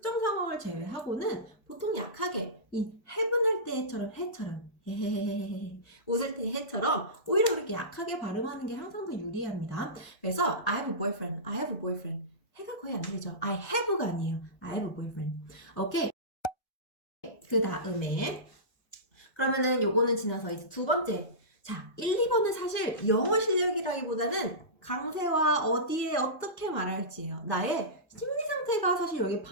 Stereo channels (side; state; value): right; late; 1.3 ms